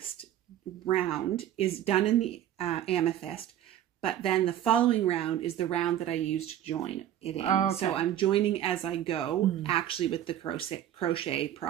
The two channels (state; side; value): quieter; left; 11.5 dB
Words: round is done in the amethyst, but then the following round is the round that I use to join it in. Oh, okay. So I'm joining as I go, actually with the crochet